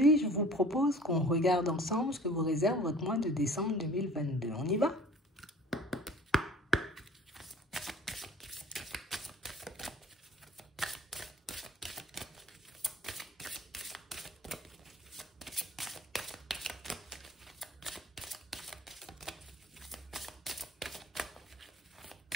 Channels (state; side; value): normal; both; correlation 0.47